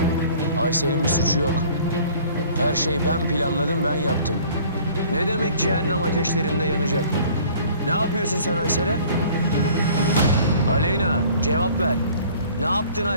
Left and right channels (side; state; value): both; inverted; correlation -0.51